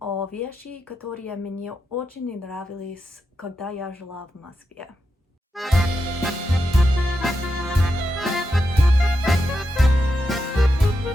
о вещи, которые мне очень не нравились, когда я жила в Москве.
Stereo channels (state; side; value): normal; both; correlation 0.86